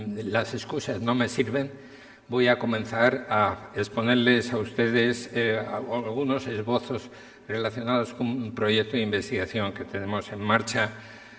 las excusas no me sirven, voy a comenzar a exponerles a ustedes algunos esbozos relacionados con un proyecto de investigación que tenemos en marcha,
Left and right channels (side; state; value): both; identical; correlation 1.00